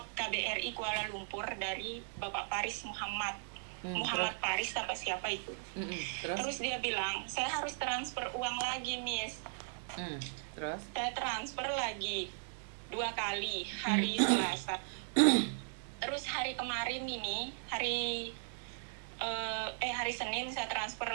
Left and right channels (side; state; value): left; silent; digital silence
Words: KBRI Kuala Lumpur dari Bapak Paris Muhammad. Muhammad Paris apa siapa itu. Terus dia bilang, saya harus transfer uang lagi, Miss. Terus? Saya transfer lagi 2 kali, hari Selasa. Terus hari kemarin ini, hari Senin saya transfer